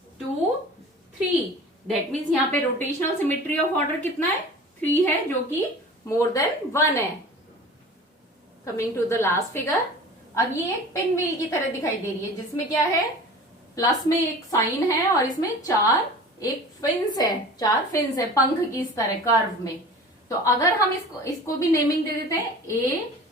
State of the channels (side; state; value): both; normal; correlation 0.40